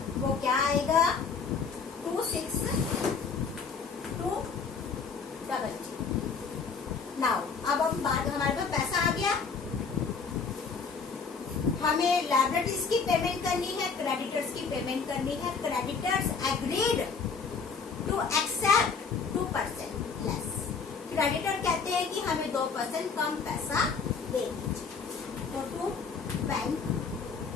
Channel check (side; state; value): right; quieter; 5.3 dB